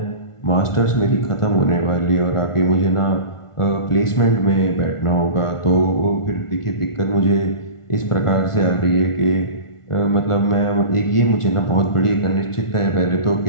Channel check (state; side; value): late; right; 1.4 ms